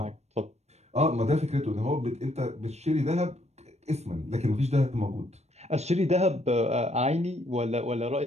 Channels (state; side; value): late; left; 0.31 ms